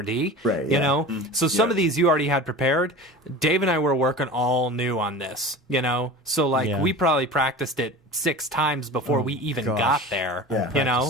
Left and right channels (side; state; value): both; normal; correlation 0.35